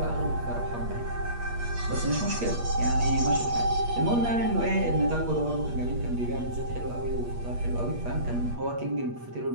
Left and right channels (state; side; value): late; left; 8.4 ms